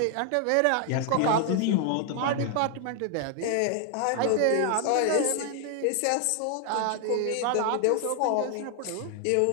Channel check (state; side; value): different; both; correlation 0.00